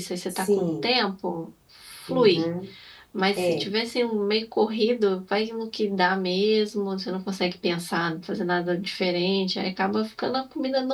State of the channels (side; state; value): both; identical; correlation 1.00